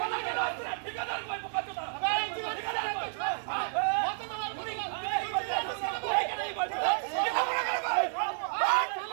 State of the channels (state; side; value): silent; left; 57 dB below the other